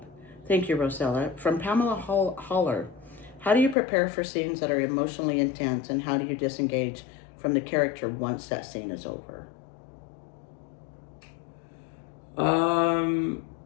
Thank you, Rosella. From Pamela Holler, how do you prepare for scenes that are emotionally intense, and how do you disengage from the character once that scene is over? Um,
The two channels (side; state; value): right; drops out; at 3.8 s